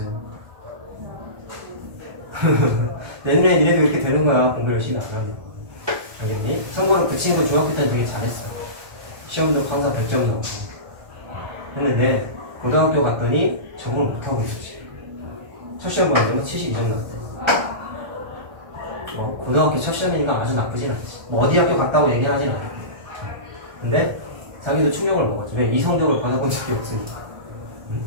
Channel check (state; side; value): late; left; 1.3 ms